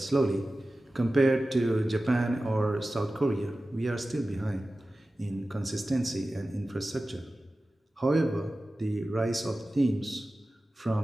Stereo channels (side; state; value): both; normal; correlation 0.95